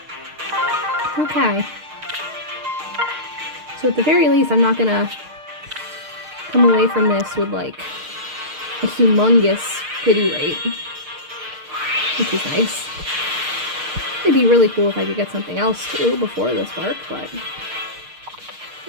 Okay. So at the very least, I'm not gonna come away from this with, like, a humongous pity rate. Which is nice. It'd be really cool if I could get something else, too, before this spark, but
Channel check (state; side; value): late; left; 6.6 ms